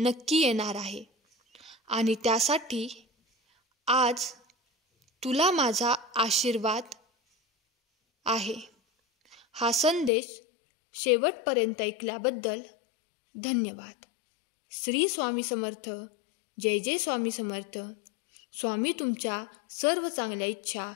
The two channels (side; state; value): right; drops out; at 10.1 s